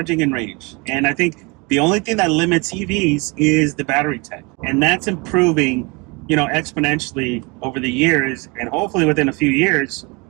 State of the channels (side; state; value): left; quieter; 28.2 dB